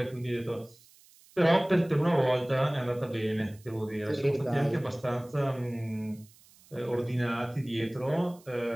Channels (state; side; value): noise; right; hiss, 27 dB below the sound